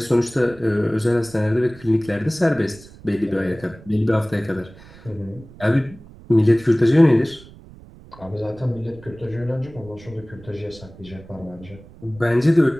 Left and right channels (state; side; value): noise; right; rumble, 21 dB below the sound